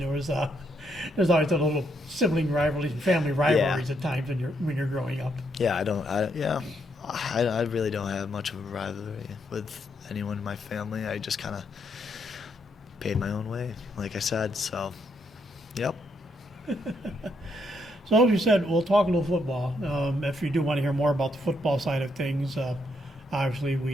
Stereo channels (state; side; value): normal; both; correlation 0.76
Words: always a little sibling rivalries and family rivalries at times when you're growing up. Yeah, I really don't have much of a rivalry with anyone in my family. I just kind of paid my own way, like I said. So, yep. So as you said, we'll talk a little football. If you do want to hear more about the football side of things, obviously